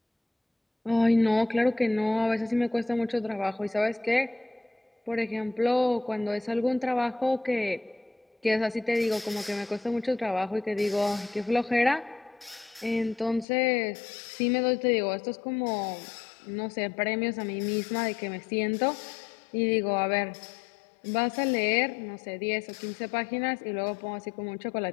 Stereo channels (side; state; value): right; drops out; at 13.5 s